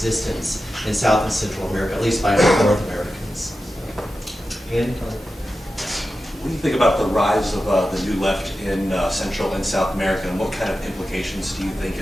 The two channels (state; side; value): normal; both; correlation 0.92